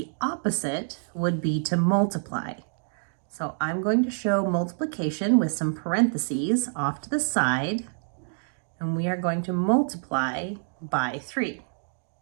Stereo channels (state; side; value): silent; left; digital silence